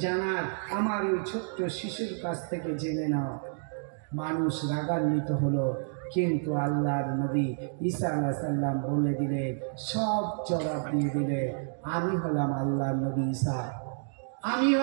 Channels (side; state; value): left; silent; digital silence